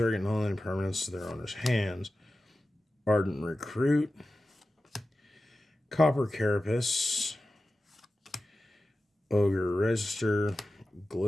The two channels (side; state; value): both; normal; correlation 0.94